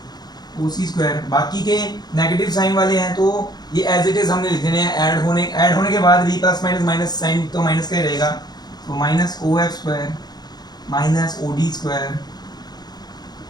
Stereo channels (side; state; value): right; late; 0.20 ms